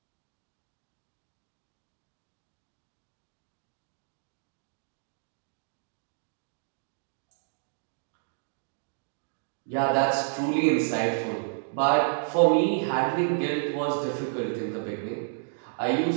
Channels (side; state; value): left; silent; digital silence